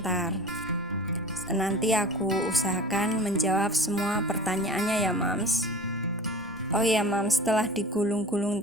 Nanti aku usahakan menjawab semua pertanyaannya ya Mams. Oh ya Mams, setelah digulung-gulung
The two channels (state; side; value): normal; both; correlation 0.39